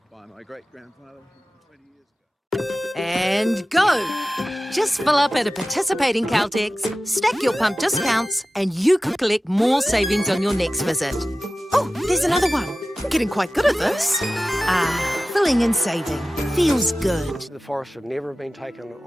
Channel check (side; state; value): both; normal; correlation 0.95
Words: by my great-grandfather 20 years ago. And go! Just fill up at a participating Caltex, stack your pump discounts, and you could collect more savings on your next visit. Oh, there's another one. Getting quite good at this. Filling and saving. Feels good. The forest should never have been taken